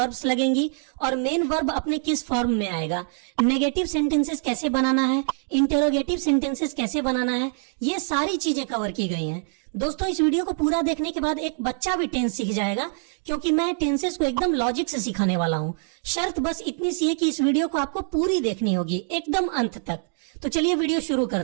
लगेंगी और मेन वर्ब अपने किस फॉर्म में आएगा, नेगेटिव सेंटेंसेस कैसे बनाना है, इंटरोगेटिव सेंटेंसेस कैसे बनाना है, ये सारी चीजें कवर की गई हैं। दोस्तों, इस वीडियो को पूरा देखने के बाद एक बच्चा भी टेंस सीख जाएगा, क्योंकि मैं टेंसेस को एकदम लॉजिक से सिखाने वाला हूँ। शर्त बस इतनी सी है कि इस वीडियो को आपको पूरी देखनी होगी, एकदम अंत तक। तो चलिए वीडियो शुरू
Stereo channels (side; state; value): left; silent; 61 dB below the other